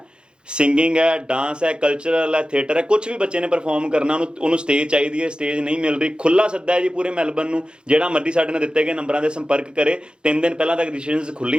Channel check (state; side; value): late; left; 0.052 ms